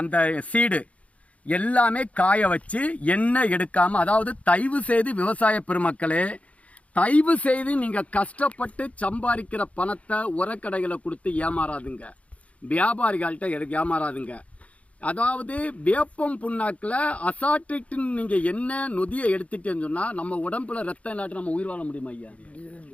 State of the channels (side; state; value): right; late; 0.066 ms